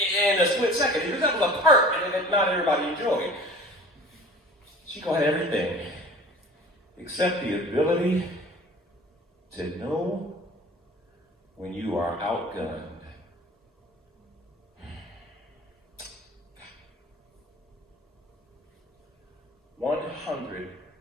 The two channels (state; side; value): normal; both; correlation 0.43